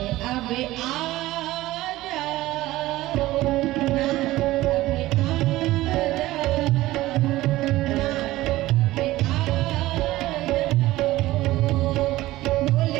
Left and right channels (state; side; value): quieter; left; 17.1 dB